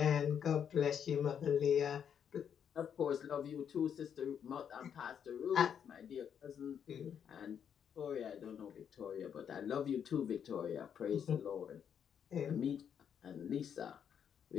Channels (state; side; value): quieter; right; 8.2 dB